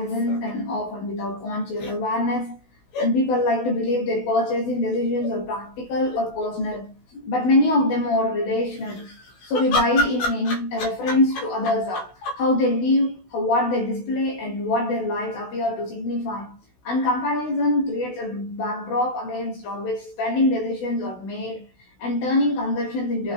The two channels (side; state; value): right; late; 16 ms